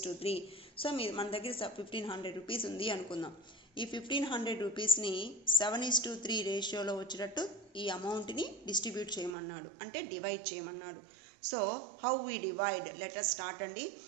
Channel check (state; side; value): drops out; left; at 9.3 s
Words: So మన దగ్గర 1500 రూపీస్ ఉంది అనుకుందాం. ఈ 1500 రూపీస్ని 7:3 రేషియోలో వచ్చేటట్టు ఈ అమౌంట్ని డిస్ట్రిబ్యూట్ చేయమన్నాడు, అంటే డివైడ్ చేయమన్నాడు. So how we divide? Let us start అండి.